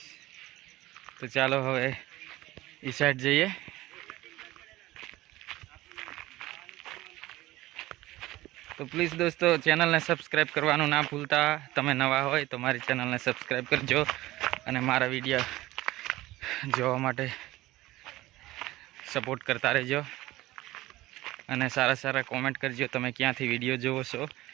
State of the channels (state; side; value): quieter; left; 17.7 dB